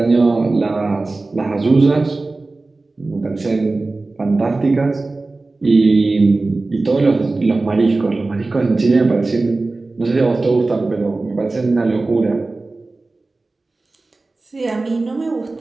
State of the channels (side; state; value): left; quieter; 3.4 dB